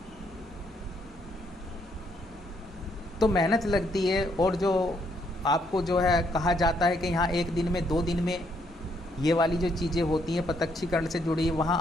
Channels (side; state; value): both; normal; correlation 0.72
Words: तो मेहनत लगती है, और जो आपको जो है कहा जाता है कि यहाँ 1 दिन में 2 दिन में ये वाली जो चीज़ें होती हैं प्रत्यक्षीकरण से जुड़ी, वहाँ